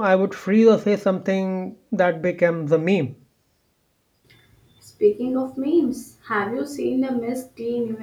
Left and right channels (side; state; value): both; identical; correlation 1.00